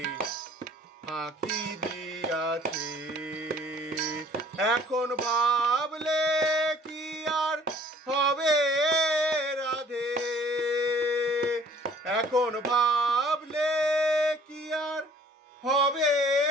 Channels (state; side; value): normal; both; correlation 0.54